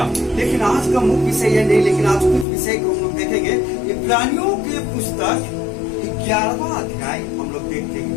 लेकिन आज का मुख्य विषय यह नहीं, लेकिन आज कुछ विषय को हम लोग देखेंगे। इब्रानियों के पुस्तक 11वां अध्याय हम लोग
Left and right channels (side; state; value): right; drops out; at 2.5 s